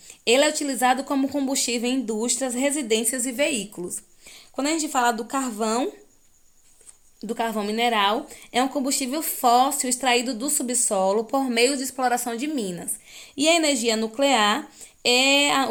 Ele é utilizado como combustível em indústrias, residências e veículos. Quando a gente fala do carvão mineral, é um combustível fóssil extraído do subsolo por meio de exploração de minas. E a energia nuclear é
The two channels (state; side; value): identical; both; correlation 1.00